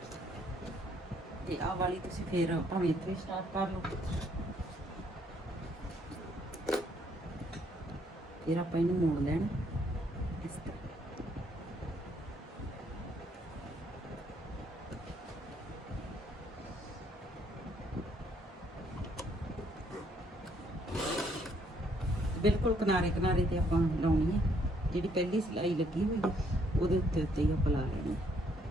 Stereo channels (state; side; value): normal; both; correlation 0.68